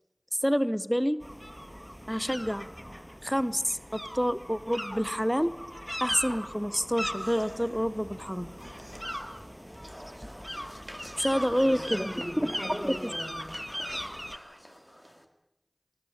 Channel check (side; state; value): both; identical; correlation 1.00